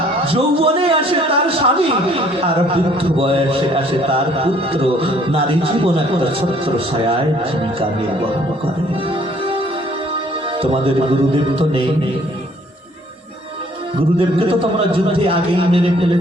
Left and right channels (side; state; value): both; normal; correlation 0.60